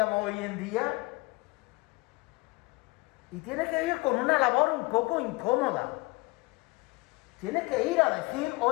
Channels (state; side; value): quieter; right; 24.3 dB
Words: hoy en día, y tiene que ir con una labor un poco incómoda. Tiene que ir a decir,